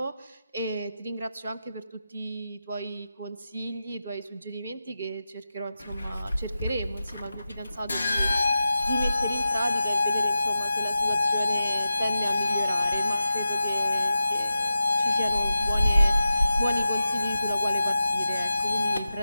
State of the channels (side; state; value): both; inverted; correlation -0.91